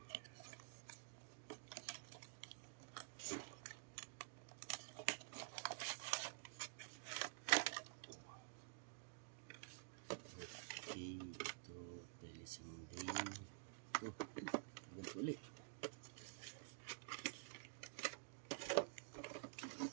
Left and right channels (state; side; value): silent; left; digital silence